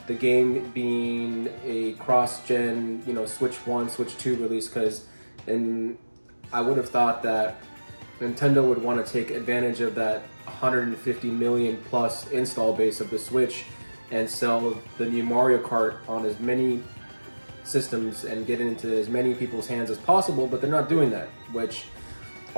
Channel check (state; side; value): inverted; both; correlation -1.00